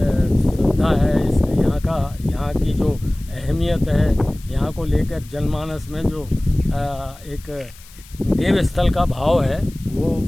है, इसके यहाँ की जो अहमियत है, यहाँ को लेकर जनमानस में जो एक देव स्थल का भाव है वो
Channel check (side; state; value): left; noise; hiss, 23 dB below the sound